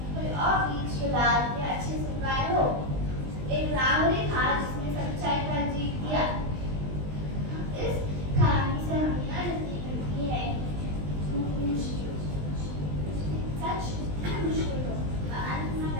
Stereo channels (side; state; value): left; late; 20 ms